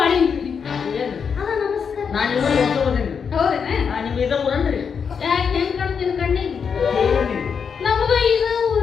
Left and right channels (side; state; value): right; quieter; 6.4 dB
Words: ಏನು ಅದ ನಮಸ್ಕಾರ ನಾನು ಇವಾಗ ಹೊಸೋದೇನು ಹೌದೇನ ನಿಮ್ಮ ಇದ ಊರನ್ರಿ ಯಾಕೆ ಹೆಂಗ್ ಕಾಣ್ತೀನಿ ಕಣ್ಣಿಗೆ ನಮಗೂ ಇದು